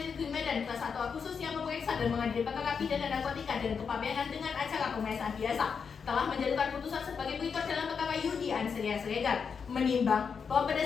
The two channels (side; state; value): right; quieter; 6.1 dB